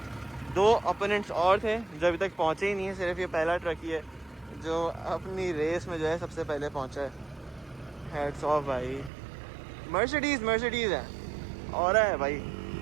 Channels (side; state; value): left; drops out; at 9.1 s